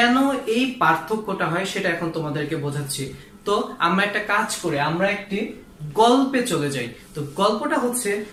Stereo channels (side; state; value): both; identical; correlation 1.00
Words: এই পার্থক্যটা হয় সেটা এখন তোমাদেরকে বোঝাচ্ছি। তো আমরা একটা কাজ করে আমরা একটি গল্পে চলে যাই। তো গল্পটা হচ্ছে,